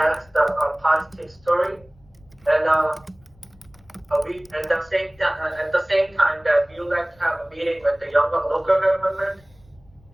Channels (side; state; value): left; noise; rumble, 29 dB below the sound